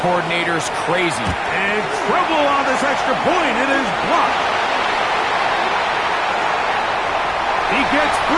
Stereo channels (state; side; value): identical; both; correlation 1.00